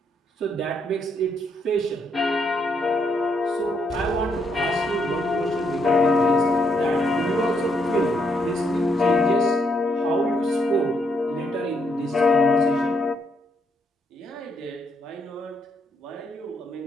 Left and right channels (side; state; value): both; normal; correlation 0.75